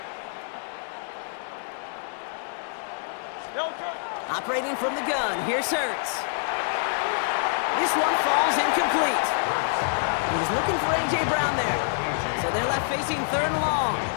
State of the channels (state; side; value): silent; right; digital silence